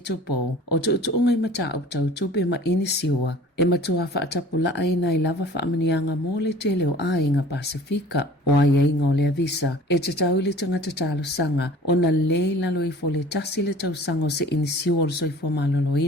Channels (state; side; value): normal; both; correlation 0.46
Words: o tu ungai mata au tau tupe ma inisiua e matua whaatapula aina I lava whaamanianga mō le te leo ainga Pasifika. O ai ainga o le avisa, e te tau le tangata talo sanga, o na le lalo I fo le tasi le tau sanga o se inisiu o le soifo